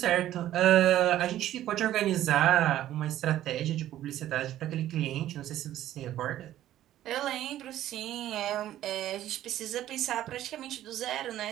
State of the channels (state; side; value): quieter; left; 13.0 dB